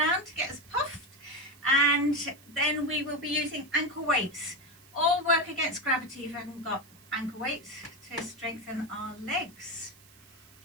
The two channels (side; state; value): right; noise; hiss, 25 dB below the sound